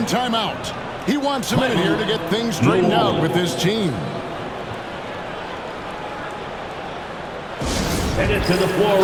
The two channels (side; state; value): both; identical; correlation 1.00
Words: timeout. He wants a minute here to get things straightened out with his team. Headed to the floor